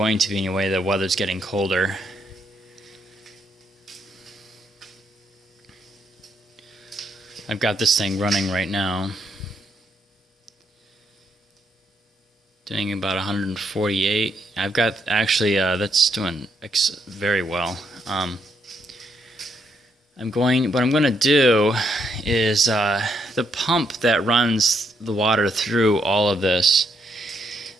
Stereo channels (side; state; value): both; normal; correlation 0.76